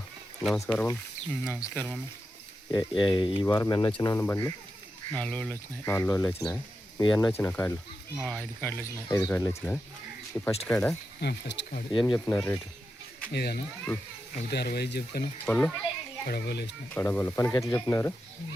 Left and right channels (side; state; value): both; normal; correlation 0.89